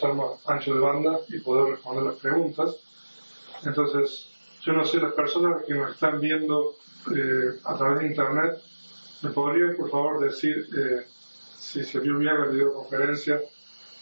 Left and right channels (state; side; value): inverted; both; correlation -1.00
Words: más ancho de banda y poder responder las preguntas. Entonces, yo no sé, las personas que nos están viendo a través de internet, ¿me podrían por favor decir si se vio bien la videoconferencia